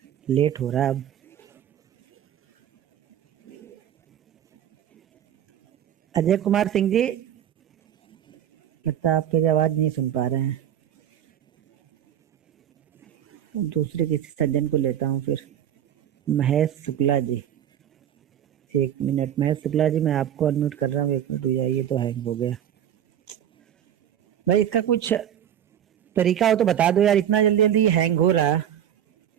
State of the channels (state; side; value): quieter; left; 10.2 dB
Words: लेट हो रहा है अब। अजय कुमार सिंह जी, लगता है आपकी आवाज नहीं सुन पा रहे हैं। दूसरे किसी सज्जन को लेता हूँ फिर। महेश शुक्ला जी, 1 मिनट। महेश शुक्ला जी, मैं आपको अनम्यूट कर रहा हूँ, 1 मिनट हो जाए। ये तो हैंग हो गया भाई, इसका कुछ तरीका हो तो बता दो यार, इतना जल्दी जल्दी हैंग हो रहा।